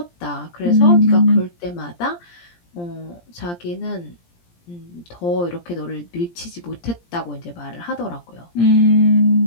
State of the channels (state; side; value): late; right; 17 ms